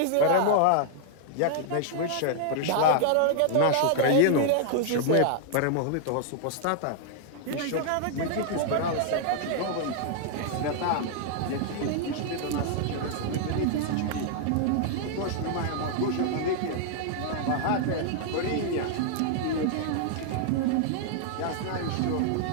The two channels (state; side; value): different; both; correlation -0.01